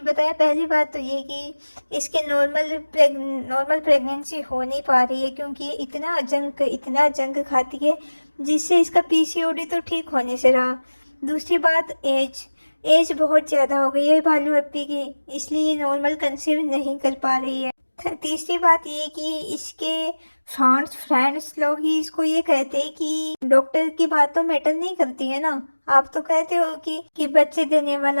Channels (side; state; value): both; inverted; correlation -1.00